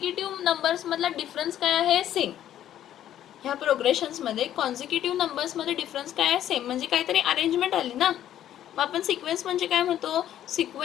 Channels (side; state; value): right; quieter; 11.5 dB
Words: नंबर्समधला डिफरन्स काय आहे, सेम. ह्या प्रोग्रेशन्समध्ये कॉन्झिक्युटिव्ह नंबर्समध्ये डिफरन्स काय आहे, सेम. म्हणजे काहीतरी अरेंजमेंट आली ना. मग आपण सिक्वेन्स म्हणजे काय म्हणतो,